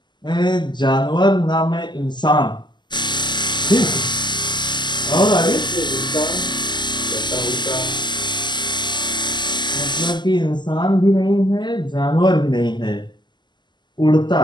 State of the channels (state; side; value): late; right; 0.21 ms